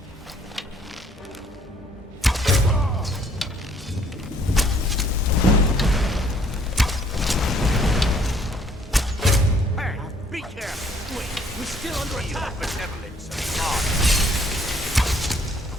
Be careful! Wait, we're still under attack! Benevolence and heart.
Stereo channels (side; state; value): both; normal; correlation 0.62